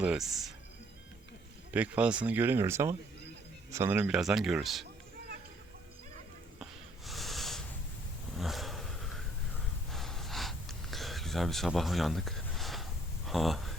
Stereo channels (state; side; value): normal; both; correlation 0.64